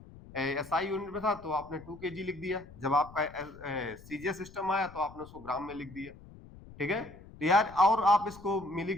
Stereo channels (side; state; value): left; noise; rumble, 19 dB below the sound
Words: एसआई यूनिट में था तो आपने 2 kg लिख दिया, जब आपका सीजीएस सिस्टम आया तो आपने उसको ग्राम में लिख दिया, ठीक है। तो यार, और आप इसको